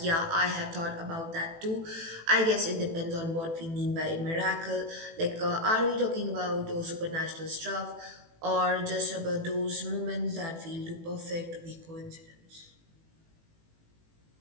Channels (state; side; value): late; left; 18 ms